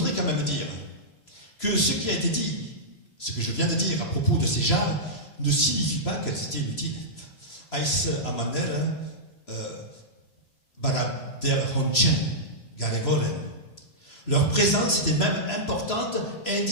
quand même dire que ce qui a été dit, ce que je viens de dire à propos de ces jarres, ne signifie pas qu'elles étaient inutiles. Als amaner barader honchen garevoren. Leur présence était même importante et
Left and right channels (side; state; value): right; late; 3.0 ms